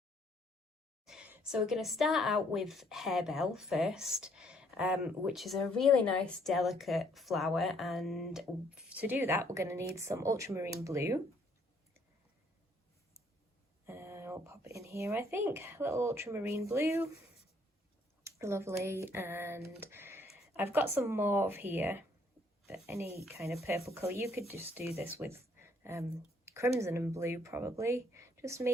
So we're going to start out with harebell first, which is a really nice delicate flower, and to do that we're going to need some ultramarine blue. I'll pop it in here, I think, a little ultramarine blue, lovely, and I've got some mauve here, but any kind of purple colour. You could just do this with crimson and blue probably, just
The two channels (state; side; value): normal; both; correlation 0.66